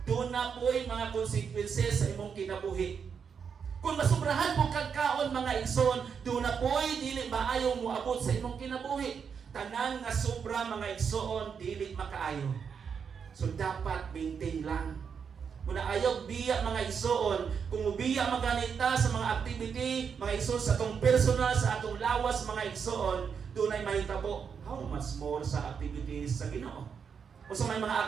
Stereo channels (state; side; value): quieter; left; 6.6 dB